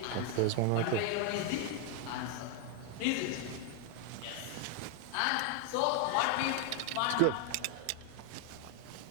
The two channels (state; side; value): different; both; correlation 0.01